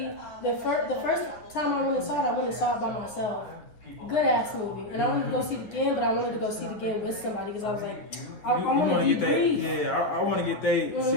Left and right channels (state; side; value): late; right; 9.4 ms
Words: the first time I went and saw it by myself. Good ass movie, and I wanted to go see it again, but I wanted to go see it again with somebody because I was like, I want to get that. Yeah, I want to get they.